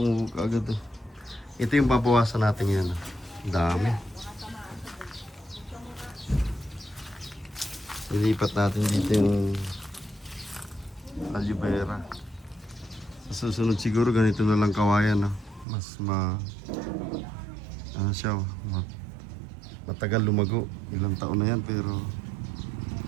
kaagad. Ito yung babawasan natin yan. Dami. Ilipat natin dito yung aloe vera. Sa susunod siguro ganito na lang kawayan. No? Mas ano siya, matagal lumago. Ilang taon na yan pero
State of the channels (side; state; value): left; drops out; at 15.7 s